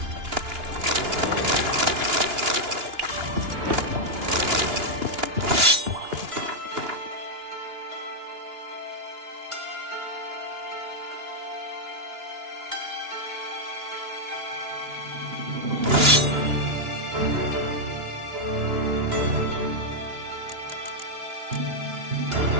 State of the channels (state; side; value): late; left; 2.9 ms